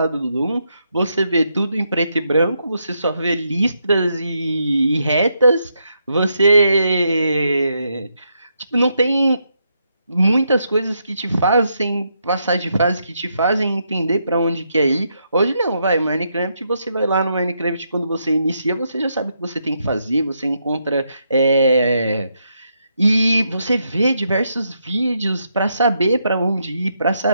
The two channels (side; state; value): both; inverted; correlation -0.79